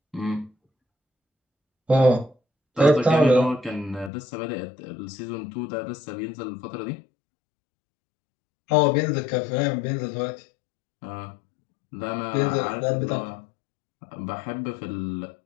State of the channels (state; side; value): drops out; right; at 4.1 s